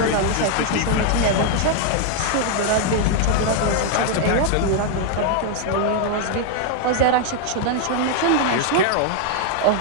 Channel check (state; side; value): different; both; correlation 0.00